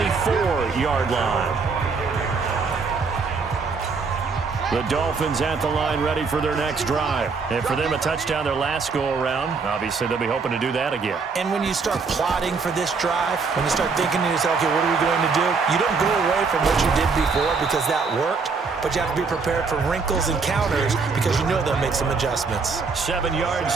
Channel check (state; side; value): quieter; left; 4.8 dB